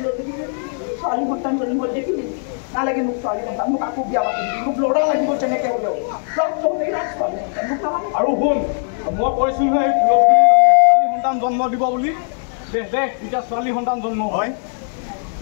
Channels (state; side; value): silent; right; 66 dB below the other